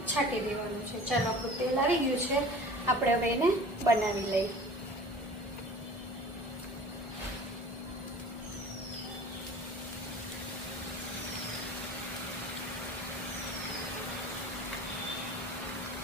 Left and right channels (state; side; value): normal; both; correlation 0.42